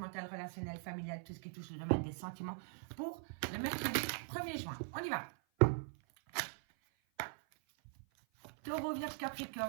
relationnel, familial, tout ce qui touche le domaine des sentiments pour le mercredi 1er juin. On y va. Taureau, Vierge,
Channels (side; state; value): left; silent; 50 dB below the other